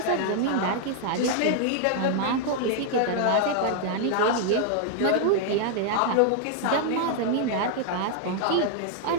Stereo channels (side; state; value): both; different; correlation -0.01